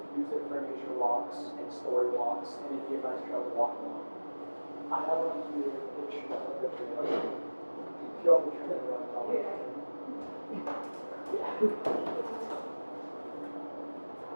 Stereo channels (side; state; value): both; inverted; correlation -1.00